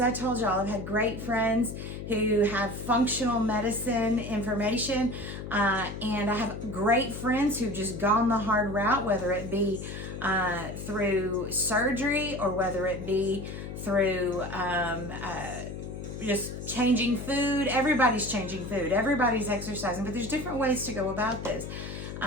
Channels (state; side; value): noise; left; hum, 8 dB below the sound